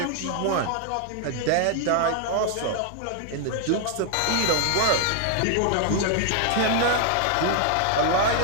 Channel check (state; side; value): different; both; correlation 0.00